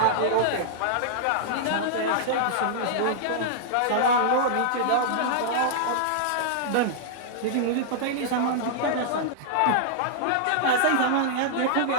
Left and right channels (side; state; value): both; different; correlation -0.01